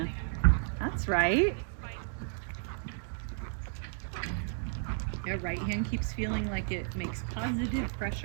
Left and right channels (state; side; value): silent; left; digital silence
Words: That's right. Your right hand keeps feeling like it makes positive